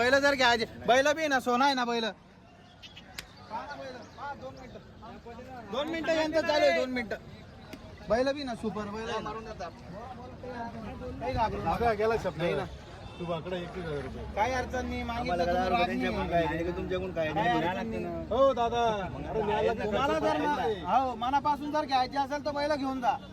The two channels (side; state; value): both; identical; correlation 1.00